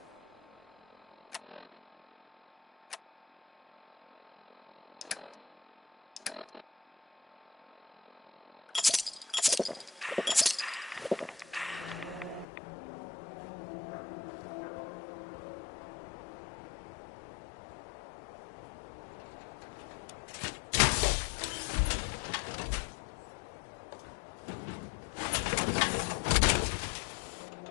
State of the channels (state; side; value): drops out; right; at 12.5 s